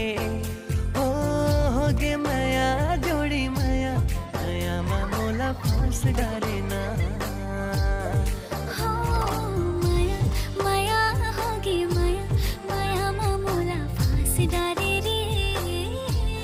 हो गे माया जोड़ी माया माया मामूला फांस डारे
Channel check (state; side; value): identical; both; correlation 1.00